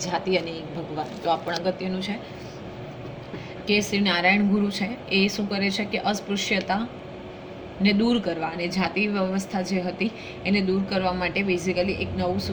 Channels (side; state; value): both; identical; correlation 1.00